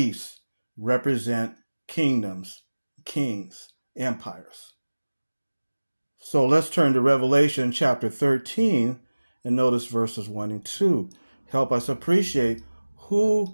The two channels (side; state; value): both; inverted; correlation -1.00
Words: represent kingdoms, kings, empires. So let's turn to Revelation chapter 13 and notice verses 1 and 2. Help us appreciate